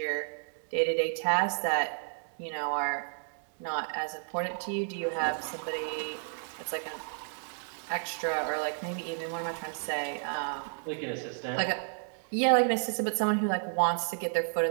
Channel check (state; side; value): silent; left; digital silence